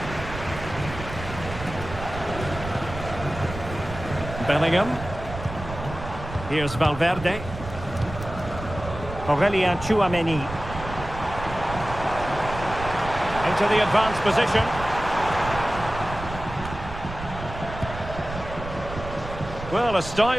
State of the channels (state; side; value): noise; right; rumble, 10 dB below the sound